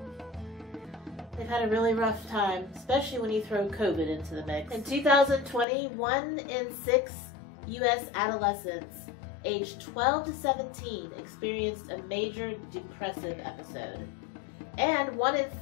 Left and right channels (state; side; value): drops out; right; at 5.7 s